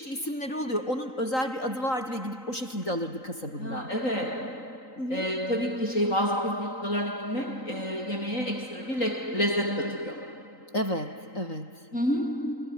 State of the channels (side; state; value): right; late; 3.9 ms